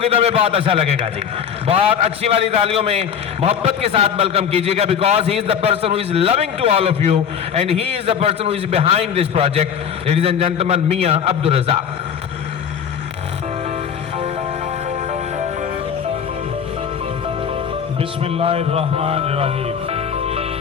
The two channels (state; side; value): quieter; right; 7.9 dB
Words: तो हमें बहुत अच्छा लगेगा जी। बहुत अच्छी वाली तालियों में मोहब्बत के साथ वेलकम कीजिएगा, because he is the person who is loving to all of you and he is the person who is behind this project. Ladies and gentleman, Mian Abdul Razzaq. बिस्मिल्लाहिर्रहमानिर्रहीम।